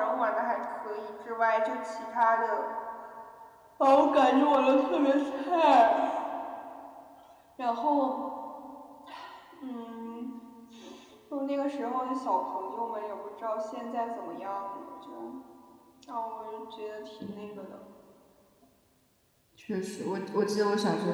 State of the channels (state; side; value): identical; both; correlation 1.00